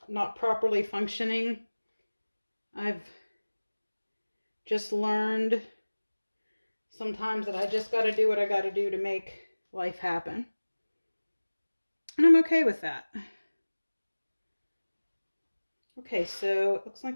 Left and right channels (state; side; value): inverted; both; correlation -1.00